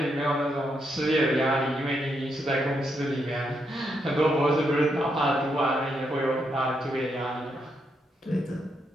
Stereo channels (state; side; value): normal; both; correlation 0.80